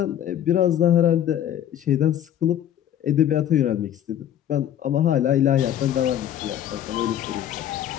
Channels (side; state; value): right; quieter; 10.8 dB